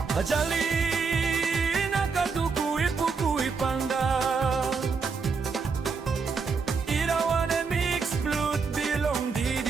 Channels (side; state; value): left; quieter; 5.1 dB